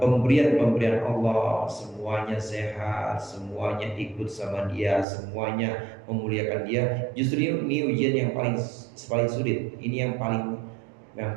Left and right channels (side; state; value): left; drops out; at 5.1 s